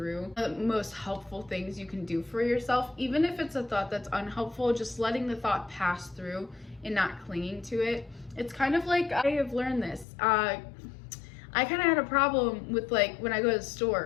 The most helpful things you can do for yourself, even if it's a thought that's unhelpful, just letting the thought pass through and not clinging to it. It's kind of like, I have learned this. I kind of had a problem with, like, when I go to the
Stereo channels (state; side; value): drops out; right; at 10.1 s